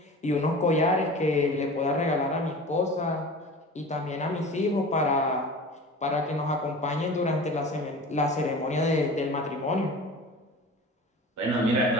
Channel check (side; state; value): both; normal; correlation 0.37